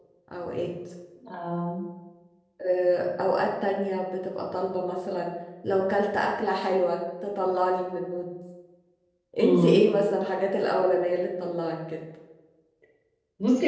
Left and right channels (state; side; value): identical; both; correlation 1.00